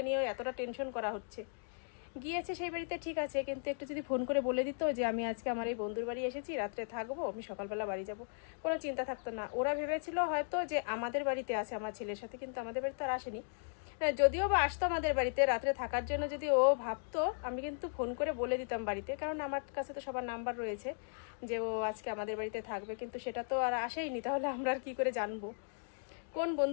নিয়ে এতটা টেনশন করা হচ্ছে। গিয়েছে সেই বাড়িতে ঠিক আছে, কিন্তু একটু যদি ফোন করে বলে দিত যে আমি আজকে আমার এই বন্ধুর বাড়ি এসেছি, রাত্রে থাকবো, আমি সকালবেলা বাড়ি যাব, কোনো চিন্তা থাকতো না। ওরা ভেবেছিল হয়তো যে আমাদের বাড়িতে আছে আমার ছেলের সাথে, কিন্তু আমাদের বাড়িতে আর আসেনি। যদিও বা আসতো আমাদের বাড়িতে রাত্রে থাকার জন্য, যদি ও ভাবতো আমি কিন্তু ফোন করে বলে দিতাম বাড়িতে, কারণ আমার কাছে তো সবার নাম্বার রয়েছে যে ও আজকে আমাদের বাড়িতে থাকবে। কিন্তু সেটা তো আর আসেইনি, তাহলে আমরা আর কি করে জানবো কোন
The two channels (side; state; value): right; silent; digital silence